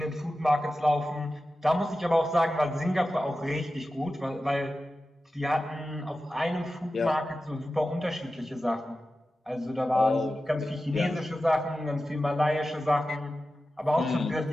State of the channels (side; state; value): both; normal; correlation 0.93